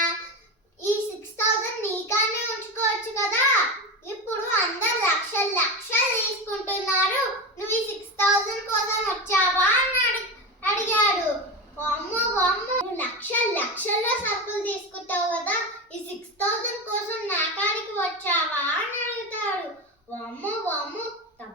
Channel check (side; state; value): both; normal; correlation 0.21